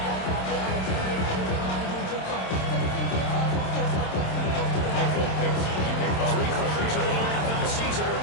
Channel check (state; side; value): late; right; 27 ms